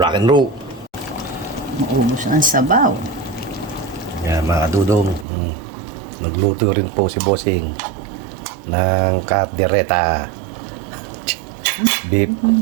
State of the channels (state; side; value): drops out; left; at 5.2 s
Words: and roll. Maubos ang sabaw. Yan mga dudong, magluto rin po si Bossing ng kaldereta beef.